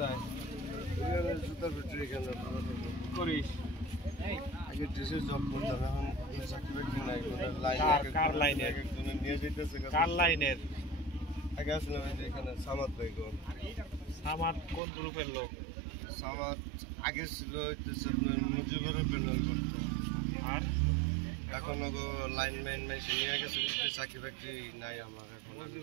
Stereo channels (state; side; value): drops out; left; at 14.8 s